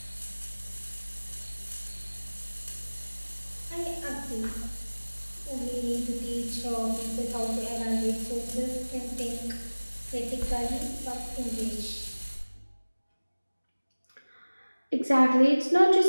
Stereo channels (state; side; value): inverted; both; correlation -1.00